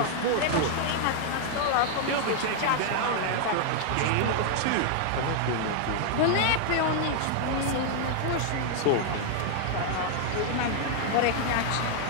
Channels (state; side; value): different; both; correlation 0.00